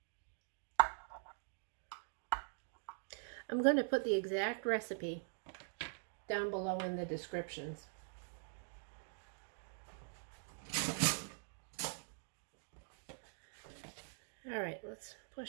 I'm going to put the exact recipe down below in the descriptions. All right, let's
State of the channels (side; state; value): left; silent; digital silence